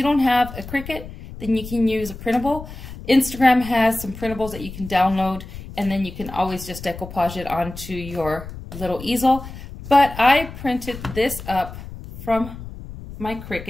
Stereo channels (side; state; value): left; noise; rumble, 12 dB below the sound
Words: don't have a Cricut, then you can use a printable. Instagram has some printables that you can download, and then you can always just decoupage it onto your little easel. But I printed this up from my